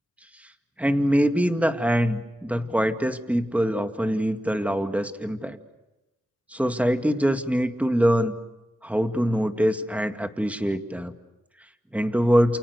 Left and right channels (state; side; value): normal; both; correlation 0.93